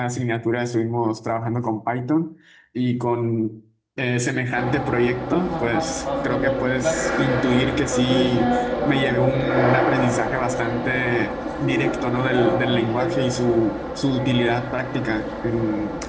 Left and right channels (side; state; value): both; identical; correlation 1.00